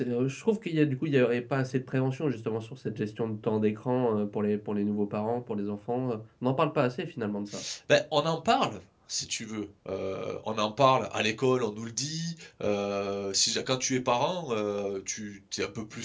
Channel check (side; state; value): both; identical; correlation 1.00